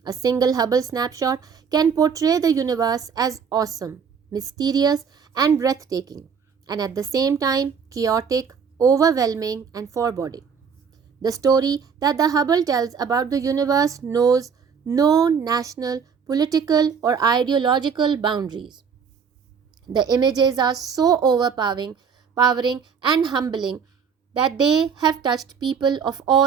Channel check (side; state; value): left; quieter; 6.4 dB